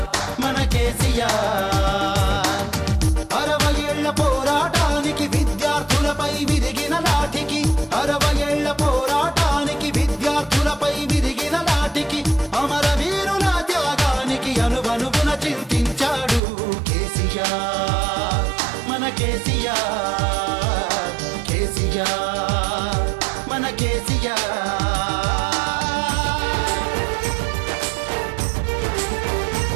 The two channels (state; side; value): drops out; left; at 16.4 s